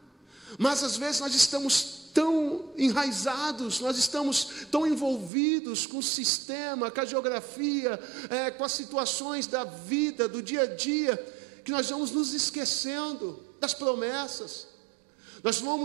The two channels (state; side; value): drops out; left; at 5.3 s